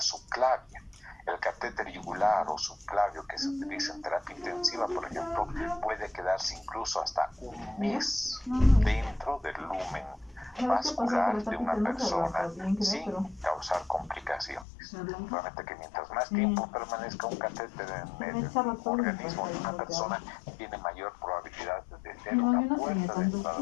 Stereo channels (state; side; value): drops out; right; at 14.7 s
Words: El catéter yugular o subclavio que se utiliza en terapia intensiva, por ejemplo, puede quedarse incluso hasta un mes dentro del lumen vascular de una persona sin causar complicaciones. Realmente que mientras más tiempo permanezca un catéter en el organismo de una persona, tiene mayor probabilidad de ser una puerta de entrada,